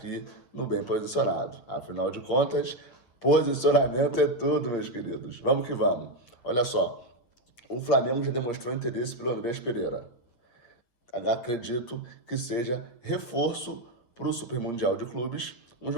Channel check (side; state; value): right; late; 8.6 ms